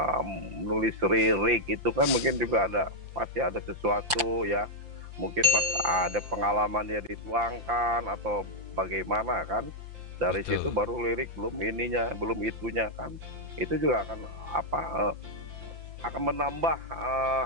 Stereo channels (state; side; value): late; left; 5.8 ms